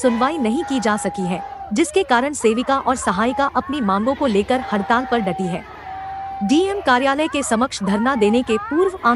नहीं की जा सकी है, जिसके कारण सेविका और सहायिका अपनी मांगों को लेकर हड़ताल पर डटी है। डीएम कार्यालय के समक्ष धरना देने के पूर्व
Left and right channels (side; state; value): both; identical; correlation 1.00